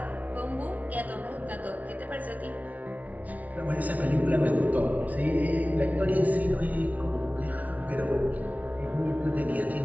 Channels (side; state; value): left; late; 0.072 ms